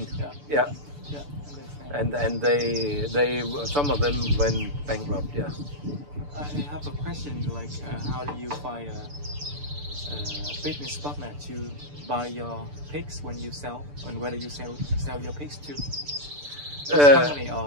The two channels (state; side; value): late; left; 6.9 ms